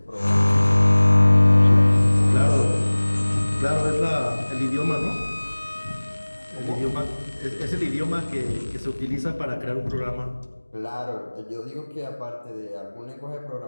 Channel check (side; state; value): both; inverted; correlation -1.00